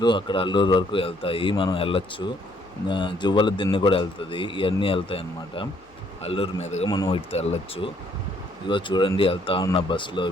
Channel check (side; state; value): left; noise; hum, 30 dB below the sound